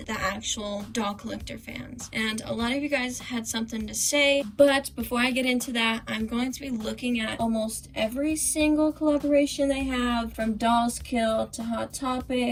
the actual doll collector fans? And a lot of you guys had something to say, but before I get into that, I'm going to be looking at almost every single collaboration they have, from Dolls Kill to Hot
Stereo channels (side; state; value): both; identical; correlation 1.00